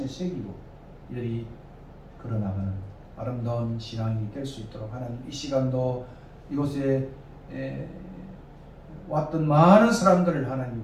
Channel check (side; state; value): both; identical; correlation 1.00